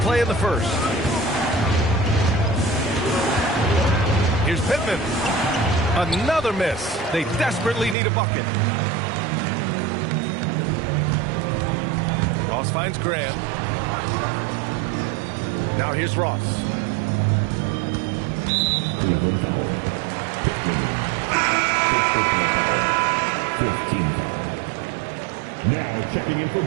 in the first. Here's Pittman. Another miss. They desperately need a bucket. Ross finds Graham. Now here's Ross. Cleveland foul. 14 foul. Now checking in for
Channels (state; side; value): drops out; left; at 8.0 s